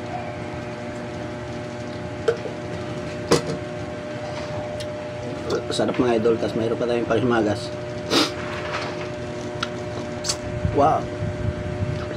Sarap mga idol. Tapos mayroon pa tayong panghimagas. Wow.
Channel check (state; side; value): identical; both; correlation 1.00